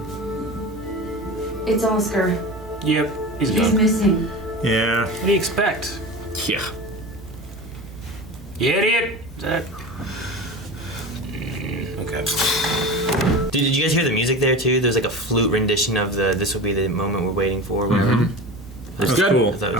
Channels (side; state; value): both; normal; correlation 0.30